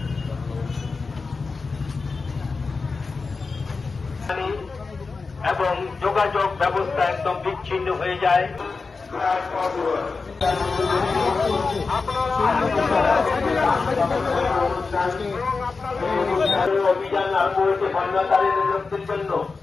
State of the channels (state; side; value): quieter; right; 4.3 dB